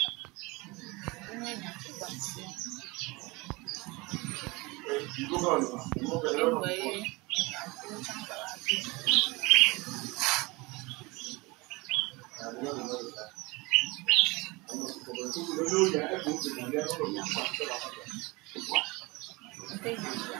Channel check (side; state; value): left; quieter; 24.4 dB